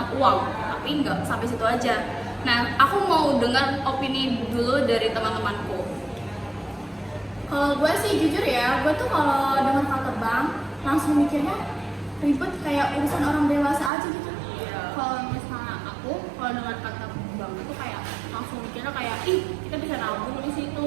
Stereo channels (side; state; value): left; drops out; at 13.9 s